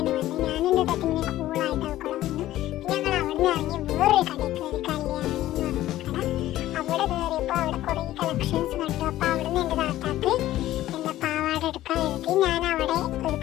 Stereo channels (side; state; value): right; quieter; 14.5 dB